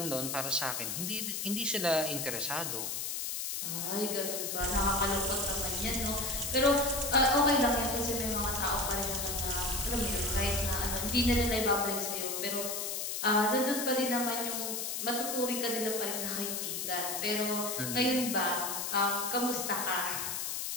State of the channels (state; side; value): noise; left; hiss, 3 dB below the sound